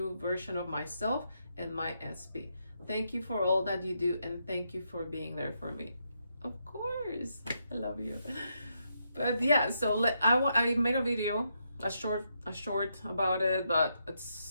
version of myself and my SP. Thank you for all that you do, and thank you for being there for me. Of course, I love you. But yeah, so I made a video, a short about it, but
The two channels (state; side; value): inverted; both; correlation -0.80